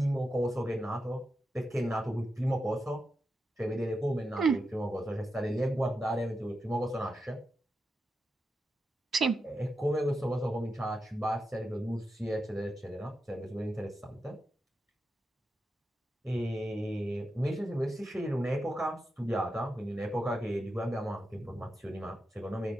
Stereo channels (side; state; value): both; normal; correlation 0.88